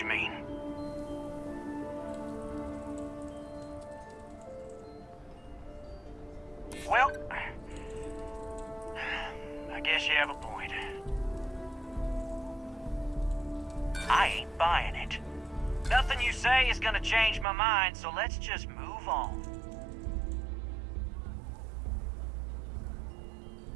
mean. Well, I guess you have a point. I ain't buying it. Nothing you say is gonna change my mind, so let's just move on.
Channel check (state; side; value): drops out; left; at 17.4 s